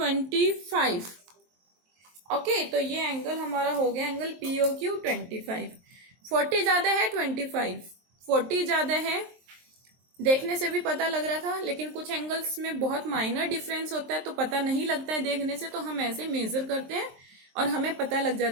ओके, तो ये एंगल हमारा हो गया एंगल POQ 25। 40 ज्यादा है, 25, 40 ज्यादा है, देखने से भी पता लग रहा था, लेकिन कुछ एंगल्स में बहुत माइनर डिफरेंस होता है, तो पता नहीं लगता है देखने से, तो हम ऐसे मेजर करते हैं और हमें पता लग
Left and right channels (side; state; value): left; late; 23 ms